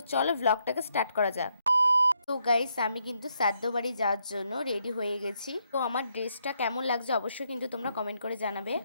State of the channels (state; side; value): inverted; both; correlation -0.76